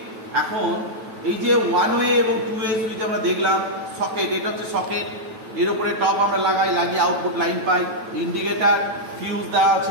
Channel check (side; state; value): left; late; 9.1 ms